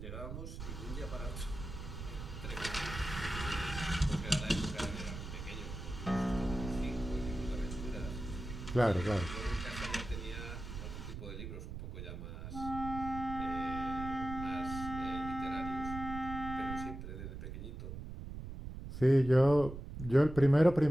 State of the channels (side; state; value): right; noise; rumble, 8 dB below the sound